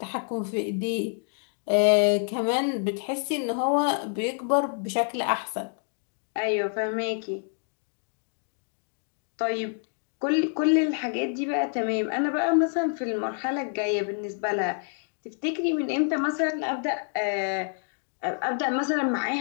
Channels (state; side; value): silent; right; 60 dB below the other